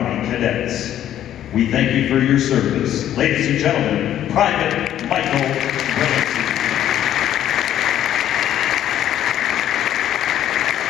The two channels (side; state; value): right; quieter; 11.4 dB